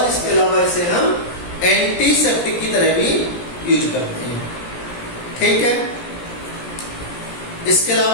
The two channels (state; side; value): late; right; 17 ms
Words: इसके अलावा इसे हम एंटीसेप्टिक की तरह भी यूज करते हैं. ठीक है, इसके